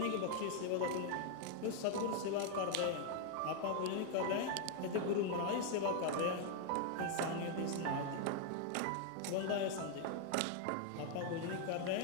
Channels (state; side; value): different; both; correlation 0.00